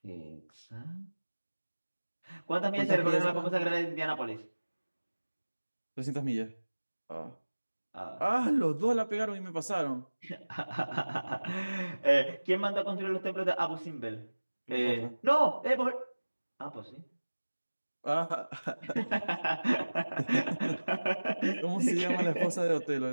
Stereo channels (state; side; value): inverted; both; correlation -1.00